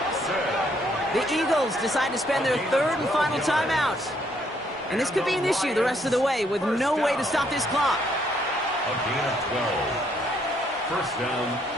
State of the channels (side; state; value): both; normal; correlation 0.69